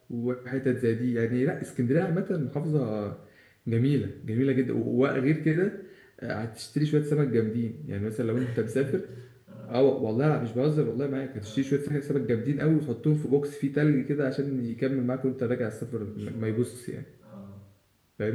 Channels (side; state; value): both; identical; correlation 1.00